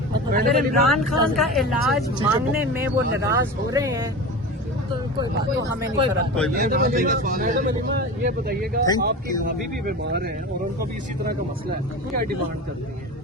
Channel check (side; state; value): both; normal; correlation 0.30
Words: मतलब अगर इमरान खान का इलाज मांगने में वो नाराज हो रहे हैं तो कोई बात, तो हमें नहीं फर्क पड़ता। मैडम अलीमा, ये बताइएगा, आपकी भाभी भी बीमार हैं और उनको भी इसी तरह का मसला है, क्या डिमांड करती है?